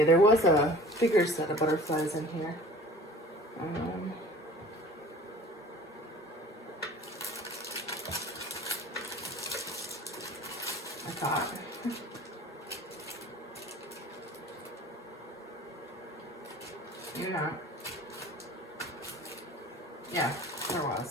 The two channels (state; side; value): normal; both; correlation 0.45